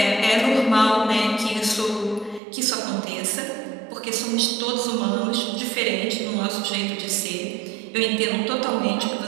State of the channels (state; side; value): drops out; left; at 2.4 s